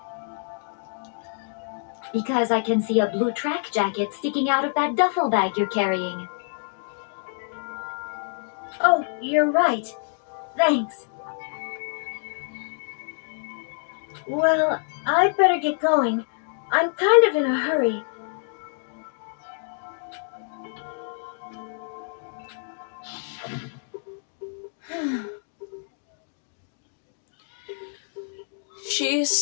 Because I can see a blue track jacket sticking out of that duffel bag you're carrying. Oh, you're right. Thanks. Well, I'd better get going. I'm kind of in a hurry. She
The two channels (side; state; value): right; silent; digital silence